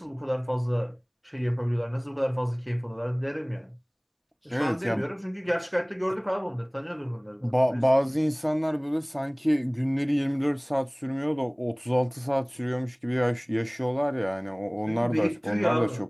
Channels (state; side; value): identical; both; correlation 1.00